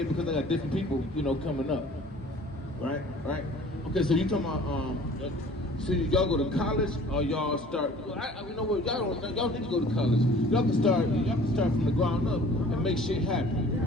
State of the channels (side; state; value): both; normal; correlation 0.49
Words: because I got different people, coming up. Right? Okay, so you talking about so y'all go to college or y'all start? You know what? Y'all need to go to college. Y'all can start from the ground up and make shit happen.